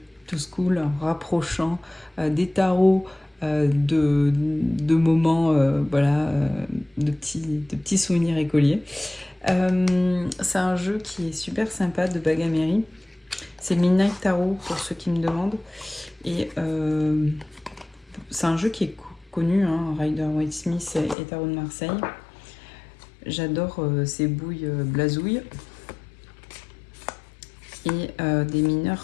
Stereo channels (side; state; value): right; drops out; at 21.2 s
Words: to school, en rapprochant des tarots de moments, de petits souvenirs écoliers. C'est un jeu qui est super sympa de Bagamery. C'est le Midnight Tarot pour ceux qui me demandent. Et c'est un jeu qui est connu, hein, Rider-Waite-Smith et Tarot de Marseille. J'adore ces bouilles blasouilles. Et des